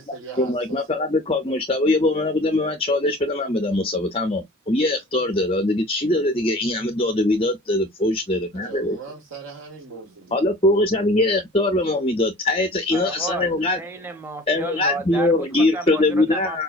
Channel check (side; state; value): both; normal; correlation 0.44